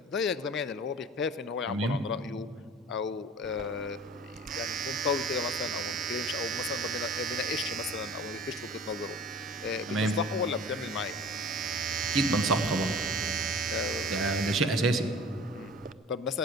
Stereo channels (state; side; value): normal; both; correlation 0.43